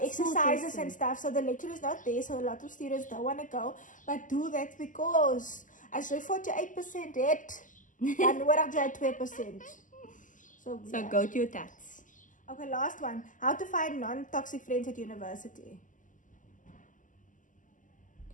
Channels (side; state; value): right; late; 0.38 ms